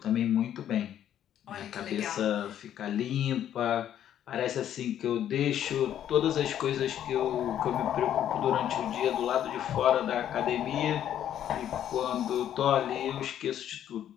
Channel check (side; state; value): right; quieter; 10.6 dB